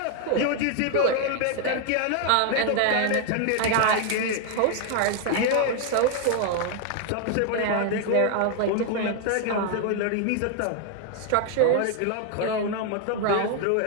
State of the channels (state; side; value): different; both; correlation 0.00